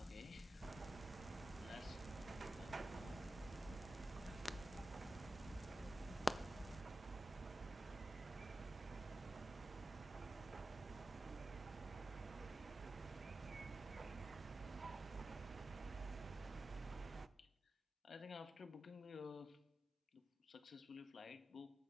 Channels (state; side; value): normal; both; correlation 0.93